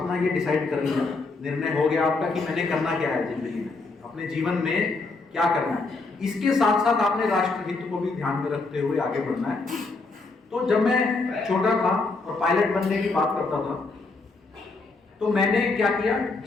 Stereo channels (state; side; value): quieter; right; 3.7 dB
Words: ये डिसाइड कर लिया, निर्णय हो गया आपका कि मैंने करना क्या है जिंदगी में, अपने जीवन में क्या करना है। इसके साथ साथ आपने राष्ट्र हित को भी ध्यान में रखते हुए आगे बढ़ना है। तो जब मैं छोटा था और पायलट बनने की बात करता था, तो मैंने क्या किया,